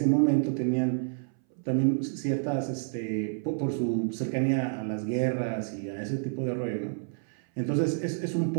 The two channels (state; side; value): silent; left; 59 dB below the other